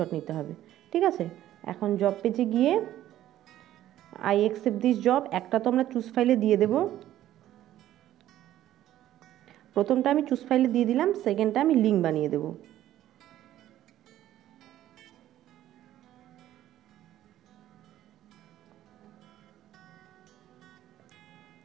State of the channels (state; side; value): quieter; left; 13.1 dB